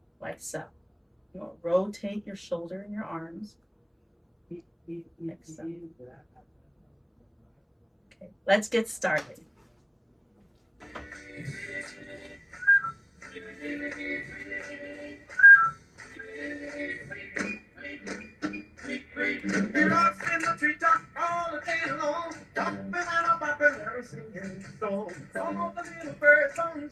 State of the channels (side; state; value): both; identical; correlation 1.00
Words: like so. You want to rotate your shoulder and your arms. Like so. Okay, let's get started.